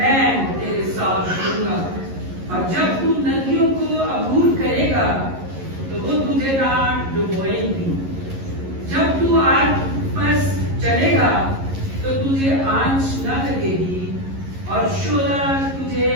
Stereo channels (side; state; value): left; late; 11 ms